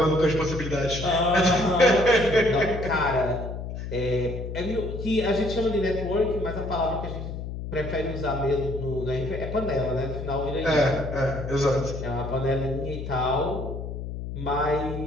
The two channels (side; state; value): left; noise; hum, 7 dB below the sound